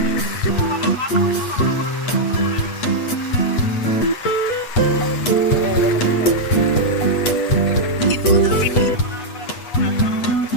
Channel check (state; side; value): late; right; 8.2 ms